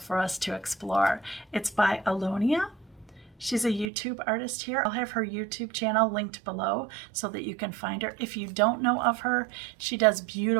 for us to explore. It's by Alyona. She's a YouTube artist here. I'll have her YouTube channel linked below so that you can find her. If you don't know of her, she does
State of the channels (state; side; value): drops out; left; at 3.9 s